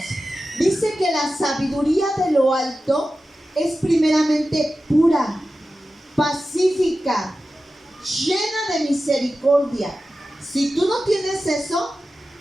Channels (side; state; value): both; normal; correlation 0.93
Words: Dice que la sabiduría de lo alto es primeramente pura, pacífica, llena de misericordia. Si tú no tienes eso,